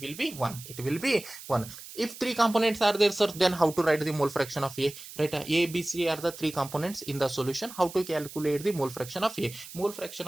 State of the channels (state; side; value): noise; right; hiss, 14 dB below the sound